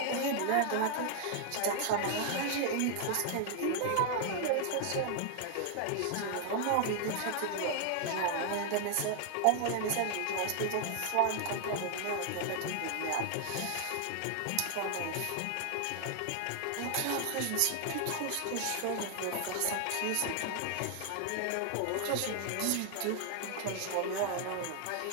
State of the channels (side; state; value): both; different; correlation 0.00